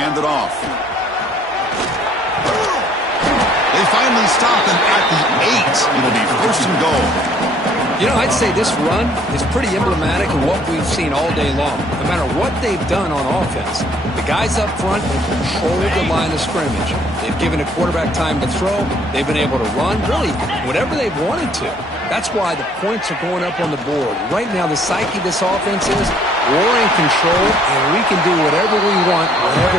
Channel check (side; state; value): both; normal; correlation 0.60